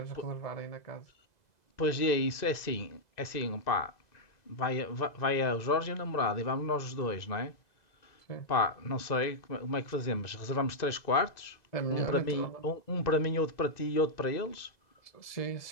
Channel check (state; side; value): late; right; 2.0 ms